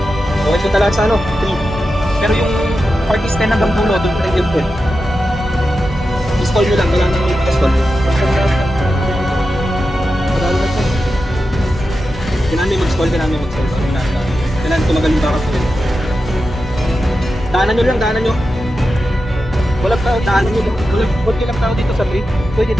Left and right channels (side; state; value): both; normal; correlation 0.90